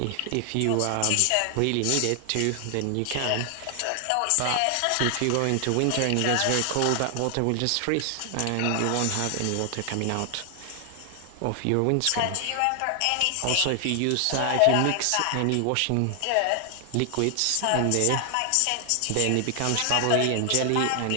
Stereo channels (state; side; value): different; both; correlation 0.00